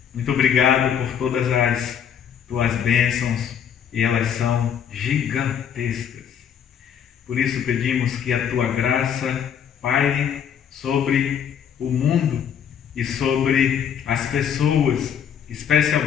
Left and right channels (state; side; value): quieter; right; 8.4 dB